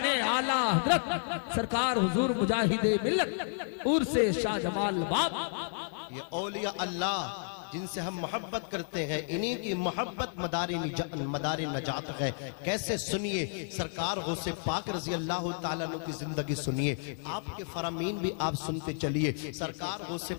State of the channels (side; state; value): right; silent; 57 dB below the other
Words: اعلیٰ حضرت سرکار حضور مجاہد ملت عرس شاہ جمال باب۔ یہ اولیاء اللہ جن سے ہم محبت کرتے ہیں، انہی کی محبت مدار نجات ہے۔ کیسے سنیے سرکار غوث پاک رضی اللہ تعالیٰ عنہ کی زندگی سنیے، آپ کے فرامین بھی آپ سنتے چلیے۔ سرکار غوث